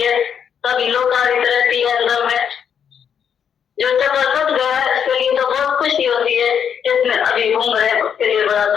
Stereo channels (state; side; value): quieter; right; 7.9 dB